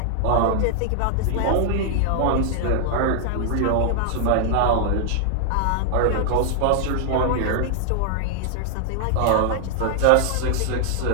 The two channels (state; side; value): different; both; correlation 0.00